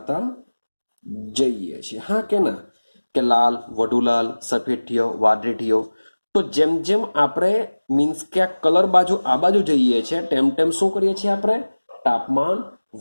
જઈએ છીએ. હા કે ના? કે લાલ, વધુ લાલ, સફેદ થયો, વાદળી થયો. તો જેમ જેમ આપણે મીન્સ કે આ કલર બાજુ આ બાજુ જઈએ છીએ તેમ તેમ શું કરીએ છીએ? આપણે તાપમાન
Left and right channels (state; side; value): inverted; both; correlation -1.00